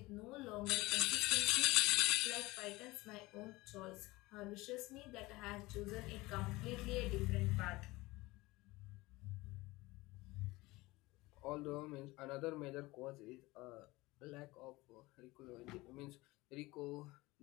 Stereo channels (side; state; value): right; quieter; 20.8 dB